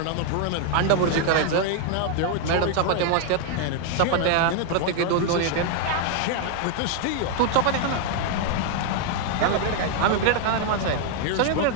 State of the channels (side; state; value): both; different; correlation 0.00